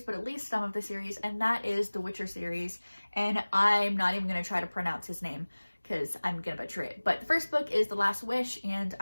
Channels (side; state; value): both; inverted; correlation -1.00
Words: but at least some of the series, and that is the Witcher series, and I'm not even going to try to pronounce his name because I'm gonna butcher it. But the first book is The Last Wish, and